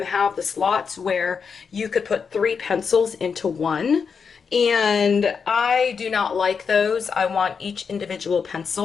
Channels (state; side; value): quieter; right; 5.9 dB